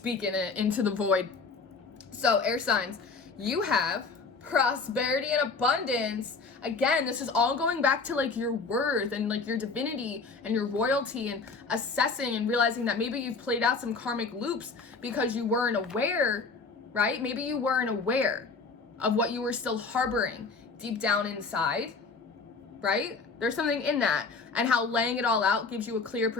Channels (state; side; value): quieter; right; 4.4 dB